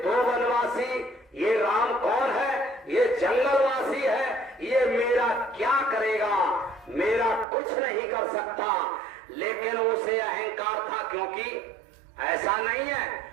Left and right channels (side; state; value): left; drops out; at 7.5 s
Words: दो वनवासी, ये राम कौन है, ये जंगलवासी है, ये मेरा क्या करेगा, मेरा कुछ नहीं कर सकता। लेकिन उसे अहंकार था, क्योंकि ऐसा नहीं है,